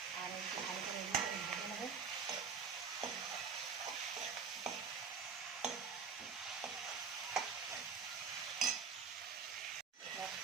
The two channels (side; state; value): left; quieter; 6.0 dB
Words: আর একটু ভালো করে ভেজে নেবো।